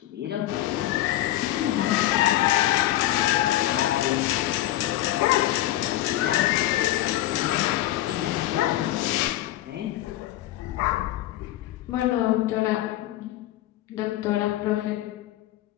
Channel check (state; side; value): quieter; right; 14.9 dB